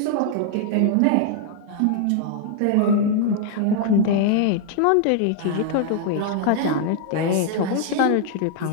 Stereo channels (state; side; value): different; both; correlation 0.00